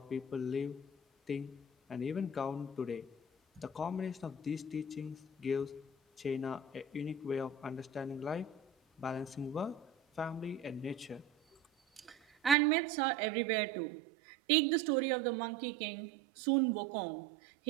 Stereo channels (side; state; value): left; drops out; at 12.6 s